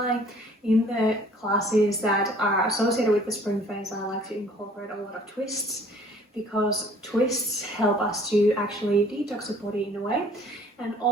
in the classes that are associated with the spring phase I like to incorporate a lot of twists, because twists help us to actually detox the body in a way. And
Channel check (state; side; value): normal; both; correlation 0.55